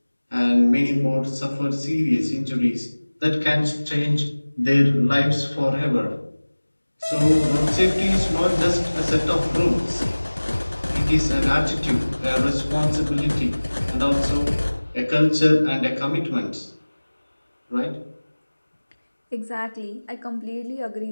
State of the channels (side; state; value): both; inverted; correlation -1.00